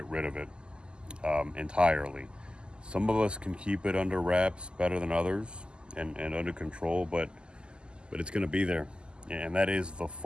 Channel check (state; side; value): late; left; 0.049 ms